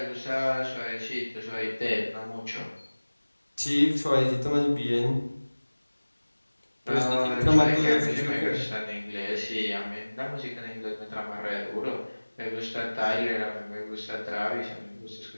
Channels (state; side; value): inverted; both; correlation -1.00